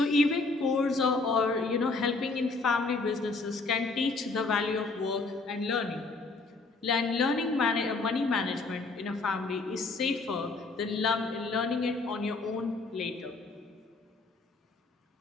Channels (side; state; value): right; quieter; 3.7 dB